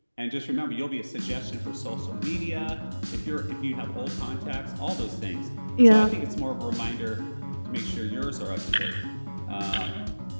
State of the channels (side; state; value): both; inverted; correlation -1.00